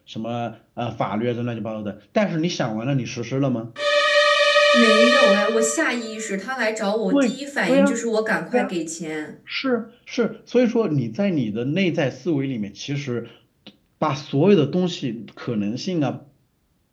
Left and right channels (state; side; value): identical; both; correlation 1.00